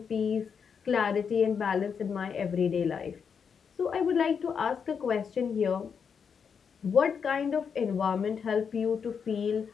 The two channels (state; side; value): quieter; right; 6.6 dB